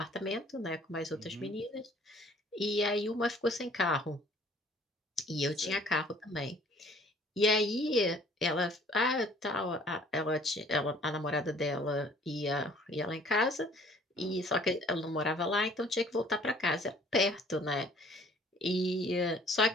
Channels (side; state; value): both; normal; correlation 0.55